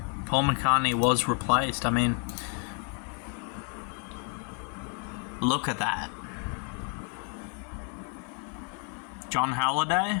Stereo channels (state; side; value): quieter; right; 38.7 dB